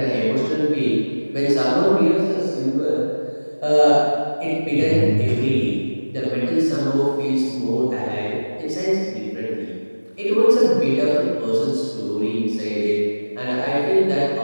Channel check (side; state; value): both; inverted; correlation -1.00